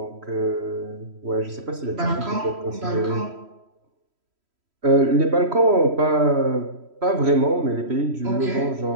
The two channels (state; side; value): late; left; 3.1 ms